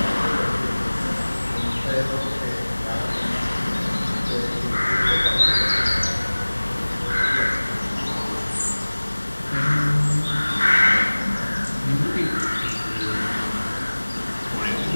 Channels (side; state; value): both; inverted; correlation -1.00